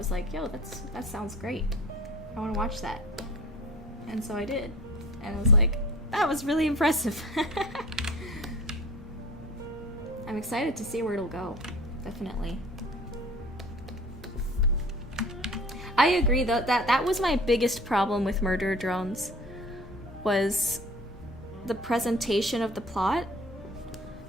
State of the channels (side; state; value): both; normal; correlation 0.44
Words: like, yo, that sounds great. I want to watch that. And so I did. And I was like, that was really impressive. I'm excited to see where it'll go. Definitely. I agree though, that was my biggest problem with Murder Drones, was the presentation of the plot.